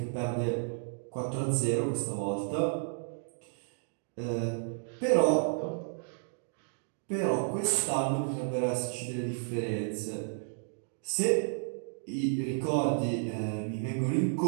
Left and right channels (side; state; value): left; silent; digital silence